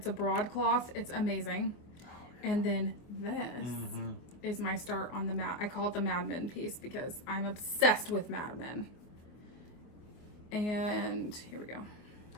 a broadcloth. It's amazing. And then this is my start on the I call it the Mad Men piece because I'm obsessed with Mad Men. And here we go.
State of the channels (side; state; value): right; late; 24 ms